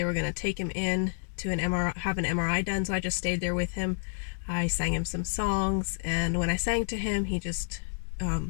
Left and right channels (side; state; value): right; silent; digital silence